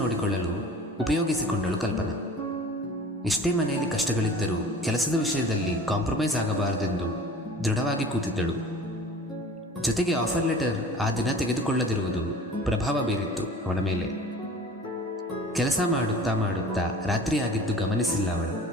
ಉಪಯೋಗಿಸಿಕೊಂಡಳು ಕಲ್ಪನಾ. ಎಷ್ಟೇ ಮನೆಯಲ್ಲಿ ಕಷ್ಟಗಳಿದ್ದರೂ ಕೆಲಸದ ವಿಷಯದಲ್ಲಿ ಕಾಂಪ್ರಮೈಸ್ ಆಗಬಾರದೆಂದು ದೃಢವಾಗಿ ಕೂತಿದ್ದಳು. ಜೊತೆಗೆ ಆಫರ್ ಲೆಟರ್ ಆ ದಿನ ತೆಗೆದುಕೊಳ್ಳದಿರುವುದು ಪ್ರಭಾವ ಬೀರಿತ್ತು ಅವಳ ಮೇಲೆ. ಕೆಲಸ ಮಾಡುತ್ತಾ ಮಾಡುತ್ತಾ ರಾತ್ರಿ ಆಗಿದ್ದು ಗಮನಿಸಿಲ್ಲ ಅವಳು.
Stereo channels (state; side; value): normal; both; correlation 0.43